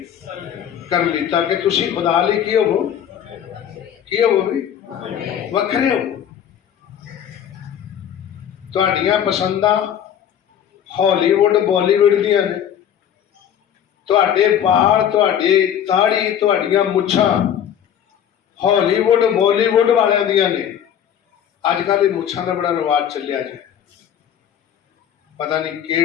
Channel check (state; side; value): quieter; right; 9.4 dB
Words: ਕਰਨ ਲਈ, ਤਾਂ ਕਿ ਤੁਸੀਂ ਖੁਦਾ ਲਈ ਕੀ ਹੋਵੋ? ਕੀ ਹੋਵੋ ਵੀ? ਵੱਖਰੇ ਹੋ। ਤੁਹਾਡੀਆਂ ਪਸੰਦਾਂ ਹਾਲੀਵੁੱਡ ਬਾਲੀਵੁੱਡ ਦੀਆਂ ਨੇ। ਤੁਹਾਡੇ ਵਾਲ, ਤੁਹਾਡੇ ਦਾੜੀ, ਤੁਹਾਡੀਆਂ ਮੁੱਛਾਂ ਹਾਲੀਵੁੱਡ ਬਾਲੀਵੁੱਡ ਵਾਲਿਆਂ ਦੀਆਂ ਨੇ। ਅੱਜ ਕੱਲ੍ਹ ਇਹ ਮੁੱਛਾਂ ਦਾ ਬੜਾ ਰਿਵਾਜ ਚੱਲਿਆ ਜੀ। ਪਤਾ ਨਹੀਂ